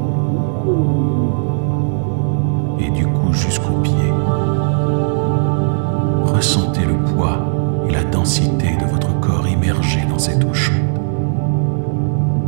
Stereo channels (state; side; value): silent; left; digital silence